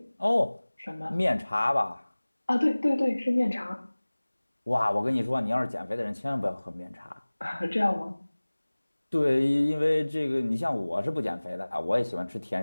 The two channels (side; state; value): both; inverted; correlation -1.00